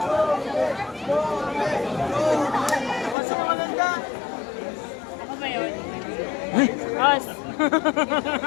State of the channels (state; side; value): drops out; right; at 3.2 s